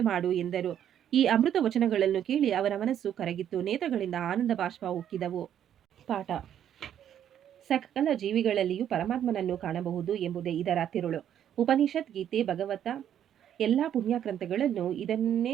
ಮಾಡು ಎಂದರು. ಈ ಅಮೃತ ವಚನಗಳನ್ನು ಕೇಳಿ ಅವರ ಮನಸ್ಸು ಕರಗಿತ್ತು. ನೇತ್ರಗಳಿಂದ ಆನಂದ ಬಾಷ್ಪ ಉಕ್ಕಿದವು. ಪಾಠ: ಸಕಲ ಜೀವಿಗಳಲ್ಲಿಯೂ ಪರಮಾತ್ಮನನ್ನು ಕಾಣಬಹುದು ಎಂಬುದೇ ಇದರ ತಿರುಳು. ಉಪನಿಷತ್, ಗೀತೆ, ಭಗವತ ಎಲ್ಲಾ ಪುಣ್ಯ ಗ್ರಂಥಗಳನ್ನು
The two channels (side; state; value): left; quieter; 10.0 dB